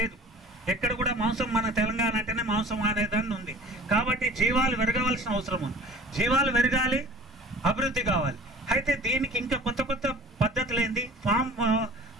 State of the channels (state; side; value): normal; both; correlation 0.44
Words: ఎక్కడ కూడా మాంసం, మన తెలంగాణ అంటేనే మాంసం అనేదాన్ని ఉంది. కాబట్టి జీవాలు పెరగవలసిన అవసరం ఉంది. జీవాలు పెరగాలి, అభివృద్ధి కావాలి. అయితే దీనికి ఇంకా కొత్త కొత్త పద్ధతులు ఏంది,